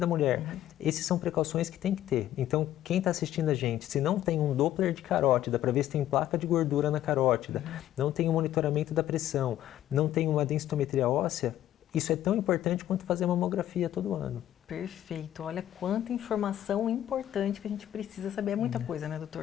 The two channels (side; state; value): right; quieter; 12.5 dB